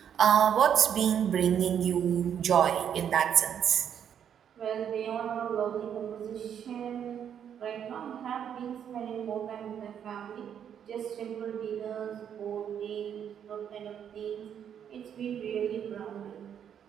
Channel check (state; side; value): quieter; left; 8.7 dB